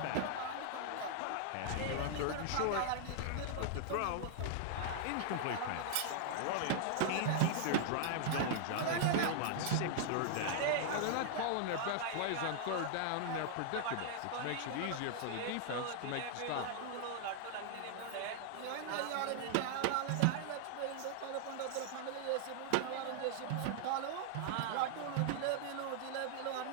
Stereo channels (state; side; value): different; both; correlation -0.01